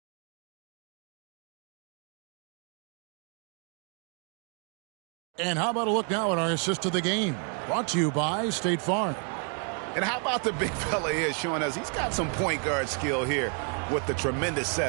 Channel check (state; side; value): quieter; left; 39.2 dB